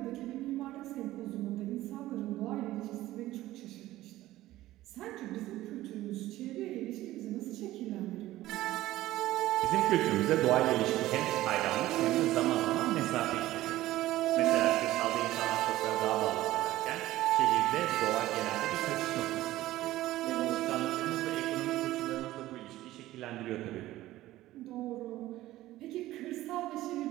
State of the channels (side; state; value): left; quieter; 15.8 dB